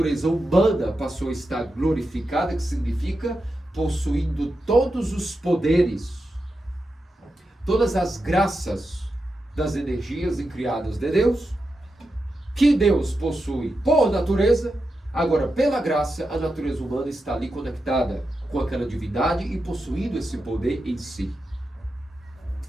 humana passou a estar glorificada, que significa possuindo todos os poderes, todas as graças das energias incriadas de Deus, que Deus possui por natureza. Agora, pela graça, a natureza humana está ali conectada com aquela divindade e possuindo esse poder em si.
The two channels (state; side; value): normal; both; correlation 0.89